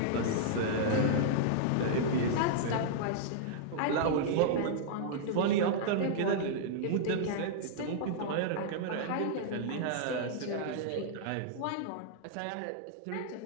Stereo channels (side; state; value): both; different; correlation -0.01